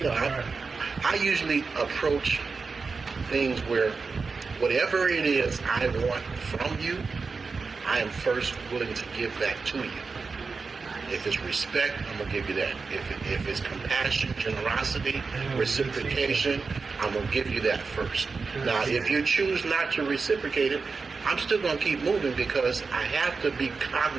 I usually approach things where whatever it is I want from you, I am first willing to give that to you. If it's respect, I'm going to give you that. If it's compassion, generosity, reciprocation, I'm going to give you that first. Now, if you choose not to reciprocate it, I'm still going to keep moving because I have to be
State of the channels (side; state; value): left; quieter; 4.6 dB